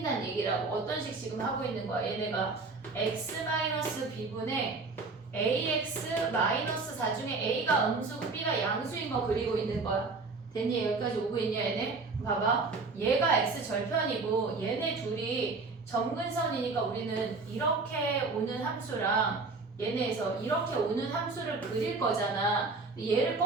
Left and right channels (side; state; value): left; quieter; 4.0 dB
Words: 얘기라고. 어떤 식 지금 하고 있는 거야. 얘네가 x-b분의 ax-4 중에 a가 음수고 b가 양수인 거 그리고 있는 거야. 됐니? 여기까지 오고 있냐 얘네? 봐봐. 얘가 x절편이고 얘네 둘이 점근선이니까 우리는 이렇게 오는 함수랑 얘네에서 이렇게 오는 함수를 그릴 거잖아. 얘를